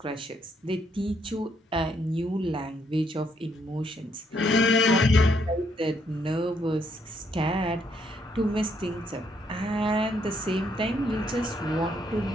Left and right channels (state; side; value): normal; both; correlation 0.72